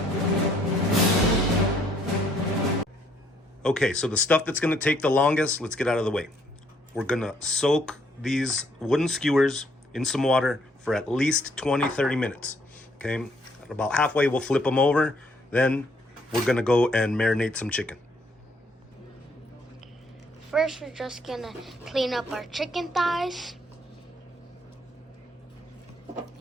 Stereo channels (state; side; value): normal; both; correlation 0.67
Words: Okay, so the stuff that's gonna take the longest, let's get out of the way. We're gonna soak these wooden skewers in some water for at least 20-30 minutes. Okay, about halfway we'll flip them over. Then we're gonna go and marinate some chicken. First, we're just gonna clean up our chicken thighs.